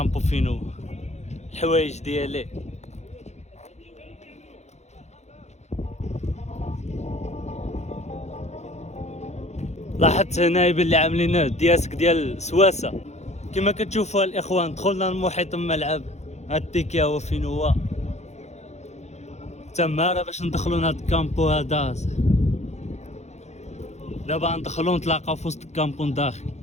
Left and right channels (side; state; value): right; late; 0.33 ms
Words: فينو الحوايج ديالي. لاحظت هنا باللي عاملين دياسك ديال سواسه كما كتشوفوا الاخوان. دخلنا المحيط الملعب، هاد التيكيا هو فين هو تماره باش ندخلوا لهاد الكامبو هذا. دابا ندخلوا نتلاقاو في وسط الكامبو داخل.